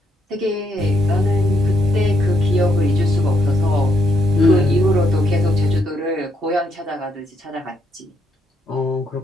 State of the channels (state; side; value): normal; both; correlation 0.75